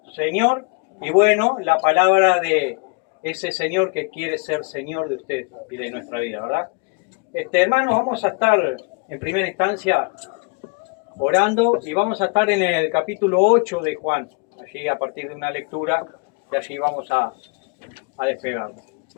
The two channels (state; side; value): quieter; right; 33.5 dB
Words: Señor. Y bueno, la palabra de ese Señor que quiere ser Señor de usted y de nuestra vida, ¿verdad? Hermanos, vamos a estar en primera instancia orando y vamos a estar en el capítulo 8 de Juan, allí a partir de una lectura, y allí vamos a despegar.